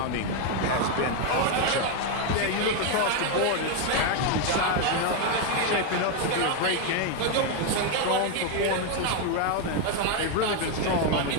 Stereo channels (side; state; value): both; different; correlation 0.01